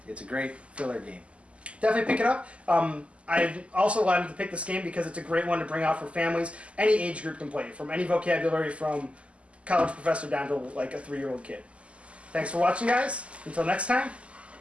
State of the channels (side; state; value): left; late; 0.059 ms